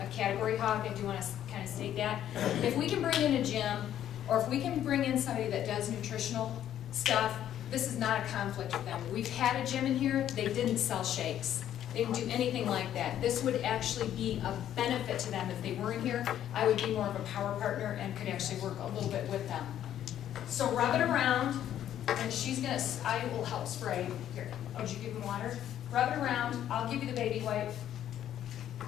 category hog. I do want to kind of state that. If we can bring in a gym, or if we can bring in somebody that does nutritional stuff, this is not a conflict with them. We've had a gym in here, they didn't sell shakes. They didn't do anything like that. This would actually be a benefit to them if they were in here. I would be more of a power partner and could actually work a little bit with them. So rub it around, and I will help spray. Here, did you give them water? Rub it around, I'll give you the baby wipe.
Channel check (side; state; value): right; quieter; 11.0 dB